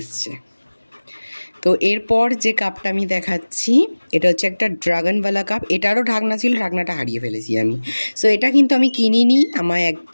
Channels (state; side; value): inverted; both; correlation -1.00